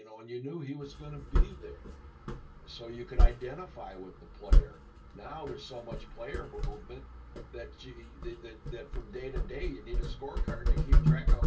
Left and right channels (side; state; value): both; identical; correlation 1.00